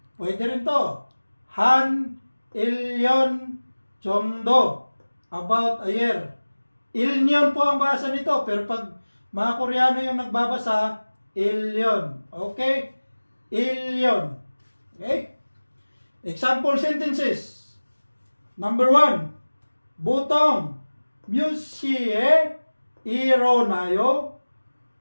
Pwede rin to. Han, ilyon, chomdo, about a year. Ilyon po ang basa nito, pero pag mga Koreano yung nagbabasa, ilyon. Okay? Ilyon. Okay? Example sentences. Number 1, butong, 뮤시에 일어나요?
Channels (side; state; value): both; inverted; correlation -1.00